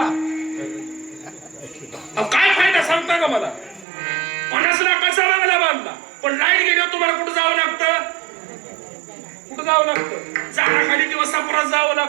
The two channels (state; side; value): drops out; left; at 3.9 s